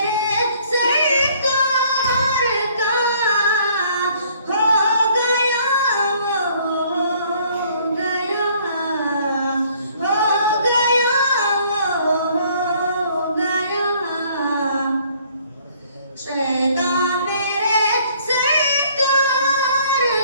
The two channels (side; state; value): both; inverted; correlation -0.60